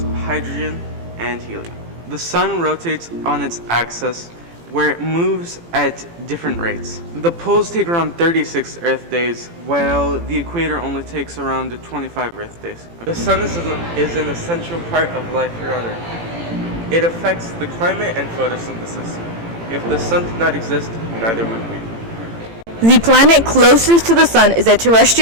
of hydrogen and helium. The sun rotates on its axis, where it moves at different rates. The poles take around 36 Earth days, while the equator only takes around 25 Earth days. The sun is an essential part of life here on Earth. It affects the climate and photosynthesis. If the sun did not exist, neither would we. The planet closest to the sun is a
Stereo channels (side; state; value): left; late; 18 ms